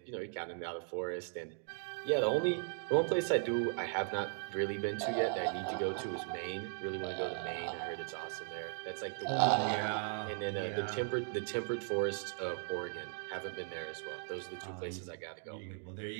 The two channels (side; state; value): left; silent; 53 dB below the other